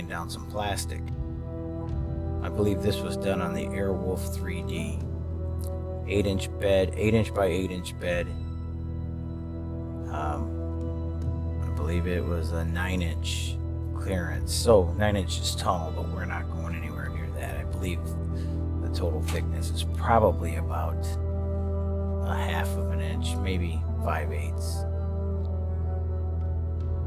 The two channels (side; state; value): both; identical; correlation 1.00